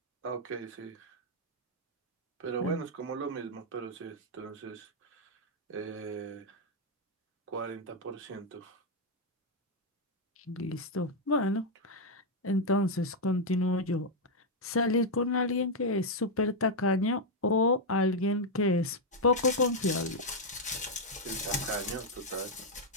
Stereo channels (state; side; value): normal; both; correlation -0.01